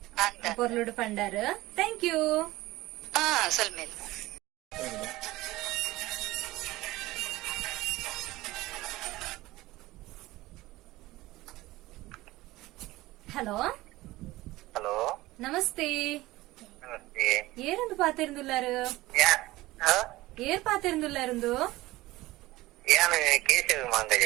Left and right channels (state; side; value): quieter; left; 18.4 dB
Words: ಪೊರ್ಲುಡು ಪಂಡಾರು ಥ್ಯಾಂಕ್ ಯು. ಸ್ವಲ್ಪ ಹಲೋ ಹಲೋ ನಮಸ್ತೆ ನಮಸ್ತೆ. ಏರಂದು ಪಾತಿರುಂದುಲ್ಲಾರು ಏರ್ ಪಾತಿರುಂದುಲ್ಲಾರು ಯಾನ್ ಕೇಶವ ಮಾಂಗಜ